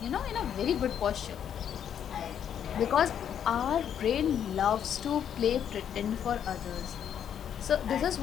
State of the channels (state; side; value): quieter; right; 9.0 dB